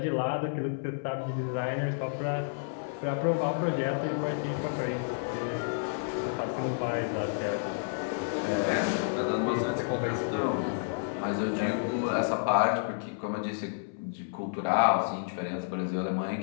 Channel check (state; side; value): silent; right; 58 dB below the other